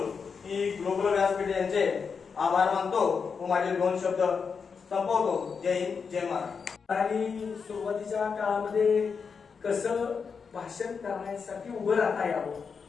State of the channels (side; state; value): right; quieter; 5.7 dB